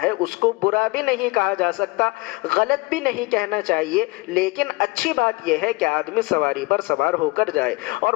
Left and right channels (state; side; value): quieter; right; 23.8 dB